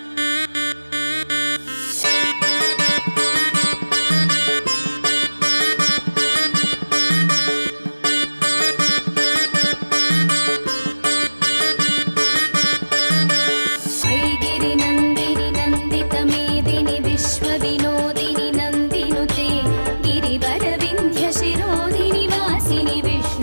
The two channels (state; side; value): inverted; both; correlation -1.00